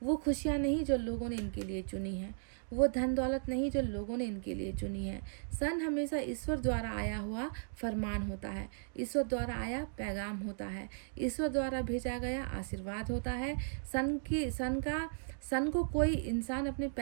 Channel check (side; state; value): left; silent; digital silence